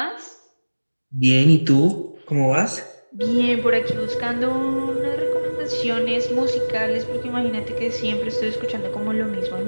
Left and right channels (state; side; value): inverted; both; correlation -1.00